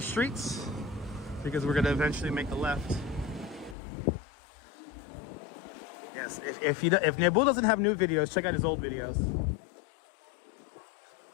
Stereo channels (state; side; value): drops out; right; at 3.8 s